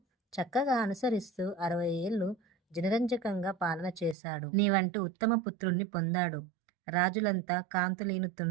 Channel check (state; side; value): drops out; left; at 4.2 s